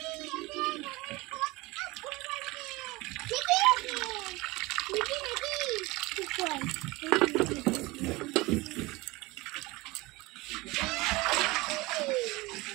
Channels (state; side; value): quieter; left; 22.3 dB